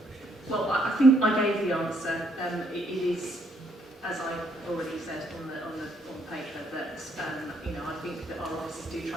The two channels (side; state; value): both; normal; correlation 0.71